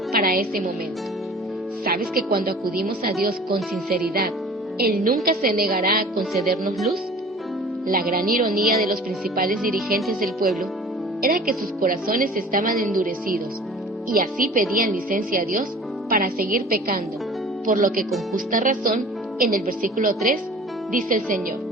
para ese momento. ¿Sabes que cuando acudimos a Dios con sinceridad, Él nunca se negará a concedernos luz? La gran ironía de los principales dirigentes del pueblo era que sus corazones estaban endurecidos, y así pedían licencia a Dios para seguir pecando, por lo que con justa razón, en el versículo 3, dice el Señor:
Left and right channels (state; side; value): normal; both; correlation 0.44